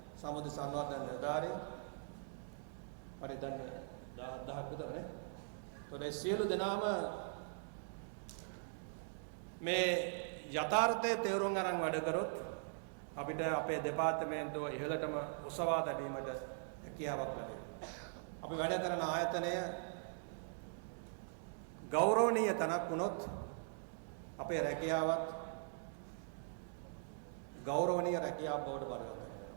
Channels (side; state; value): left; silent; digital silence